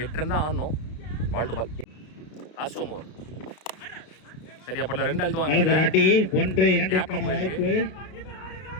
8 ரன் தான் ஆடணும். Ball to ball last over சரியா படல 2 அழுத்துவாங்க நல்ல ராட்டி 1-2 க்கான வாய்ப்பு.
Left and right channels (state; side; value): late; right; 32 ms